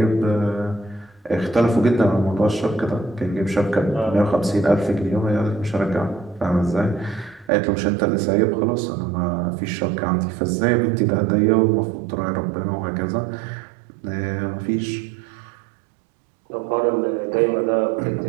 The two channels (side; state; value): left; drops out; at 7.5 s